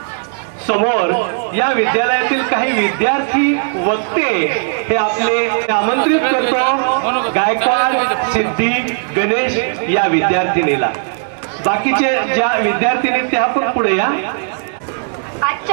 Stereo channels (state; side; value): silent; left; digital silence